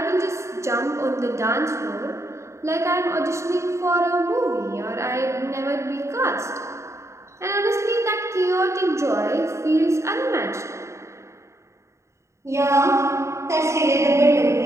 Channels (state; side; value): late; left; 0.14 ms